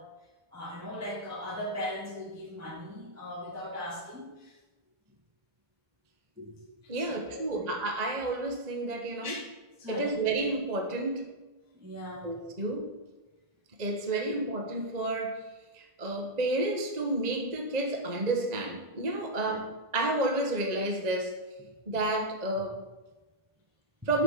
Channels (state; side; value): late; left; 1.9 ms